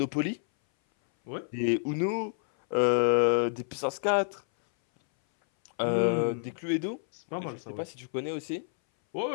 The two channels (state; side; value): silent; right; 58 dB below the other